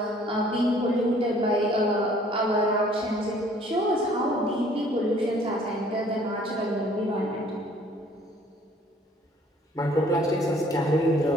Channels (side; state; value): both; normal; correlation 0.57